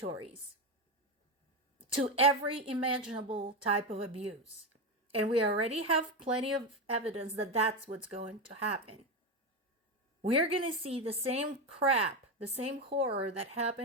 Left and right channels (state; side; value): normal; both; correlation 0.14